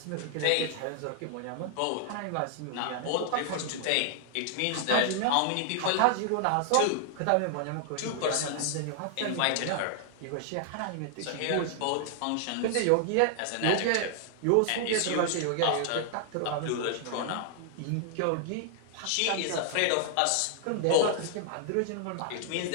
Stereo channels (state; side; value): different; both; correlation 0.00